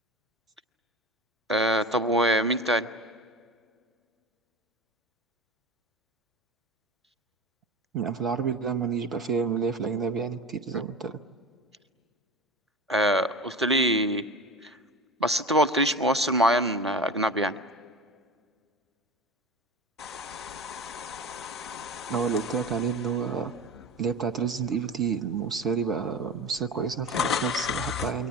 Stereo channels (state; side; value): normal; both; correlation 0.32